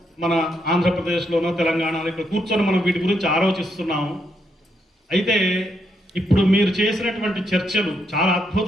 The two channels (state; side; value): normal; both; correlation 0.78